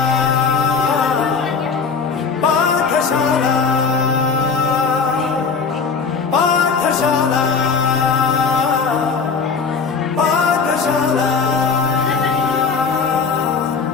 ಪಾಠಶಾಲಾ ಪಾಠಶಾಲಾ ಪಾಠಶಾಲಾ.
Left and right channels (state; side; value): quieter; right; 5.3 dB